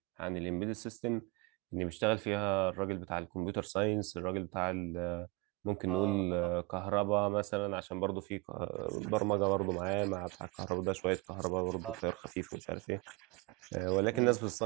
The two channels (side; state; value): left; quieter; 25.0 dB